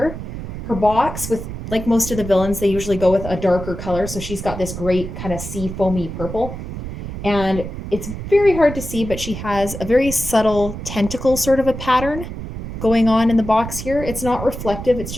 Her box, with like most of the villains, they usually go with a darker color. So she's got this great kind of sea foamy purple. And it's very hard to see, but she has a very subtle tentacle sort of a pattern going on in the box here. It's not reflective, it's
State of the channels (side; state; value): right; noise; rumble, 8 dB below the sound